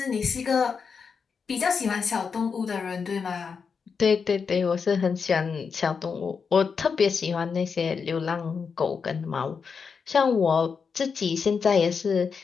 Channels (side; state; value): right; quieter; 5.7 dB